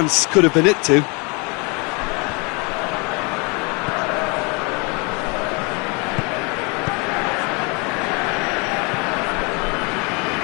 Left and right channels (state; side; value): quieter; right; 30.7 dB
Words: could have been it too.